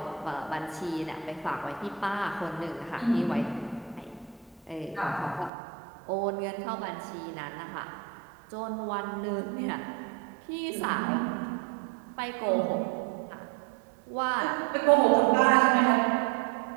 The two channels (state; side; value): drops out; left; at 5.5 s